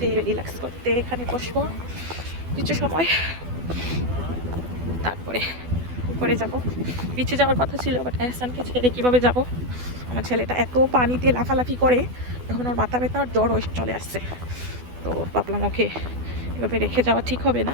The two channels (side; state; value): left; late; 12 ms